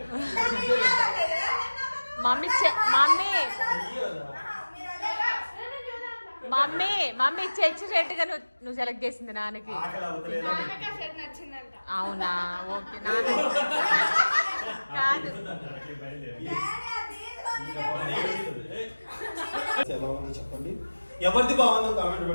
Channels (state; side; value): inverted; both; correlation -1.00